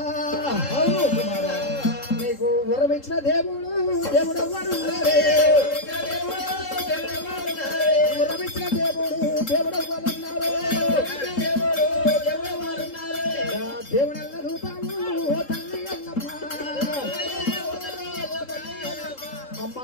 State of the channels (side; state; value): right; late; 3.7 ms